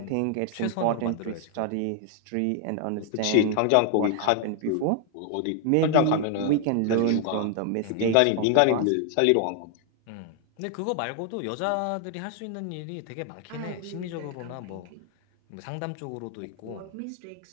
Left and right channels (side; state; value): both; different; correlation 0.00